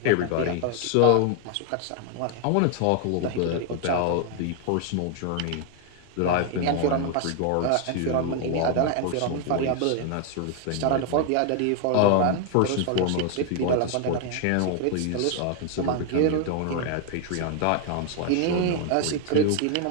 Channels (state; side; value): different; both; correlation 0.00